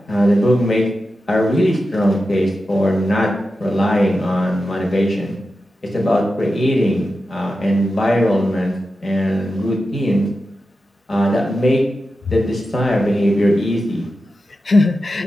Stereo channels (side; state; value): both; normal; correlation 0.91